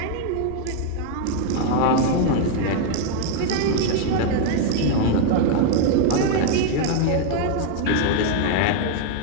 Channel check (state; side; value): different; both; correlation 0.00